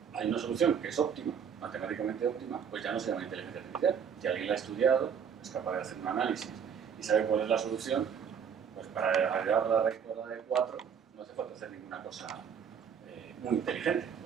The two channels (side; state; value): left; quieter; 7.4 dB